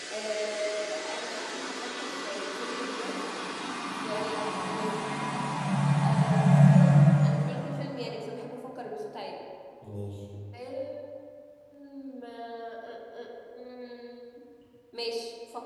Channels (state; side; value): identical; both; correlation 1.00